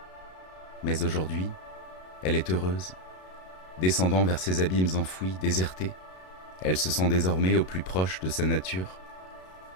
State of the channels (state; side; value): late; right; 32 ms